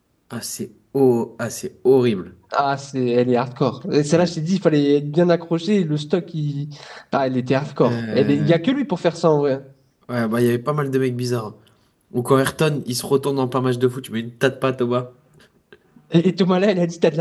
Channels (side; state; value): both; identical; correlation 1.00